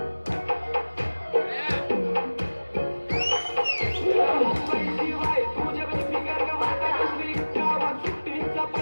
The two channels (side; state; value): both; inverted; correlation -1.00